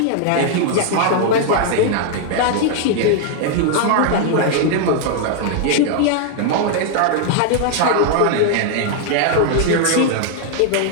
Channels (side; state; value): both; different; correlation 0.00